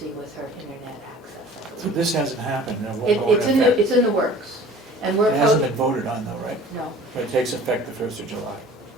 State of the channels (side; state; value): both; normal; correlation 0.46